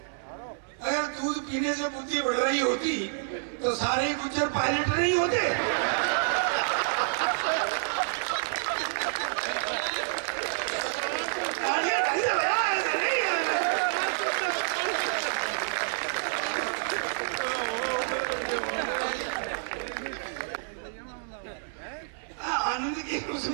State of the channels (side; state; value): left; silent; digital silence